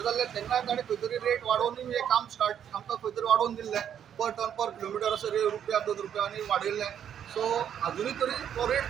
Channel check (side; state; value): left; quieter; 9.2 dB